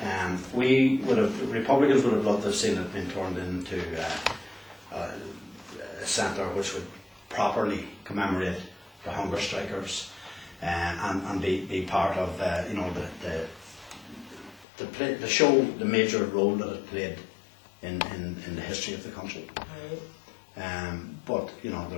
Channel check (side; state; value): right; drops out; at 14.7 s